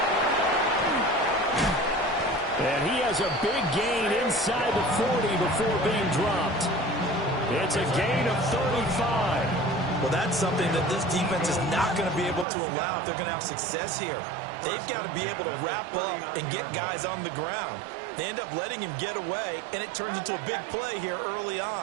And he has a big gain inside the 40 before being dropped. It's a gain of 35. Well, that's something that this defense is not going to be able to allow if they're going to have success here. They've got to be able to wrap up and get guys on the ground. They end up letting him get away, and it turns into a big play here early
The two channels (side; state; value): left; drops out; at 12.5 s